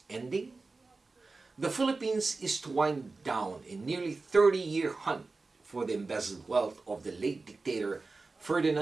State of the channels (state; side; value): quieter; left; 3.8 dB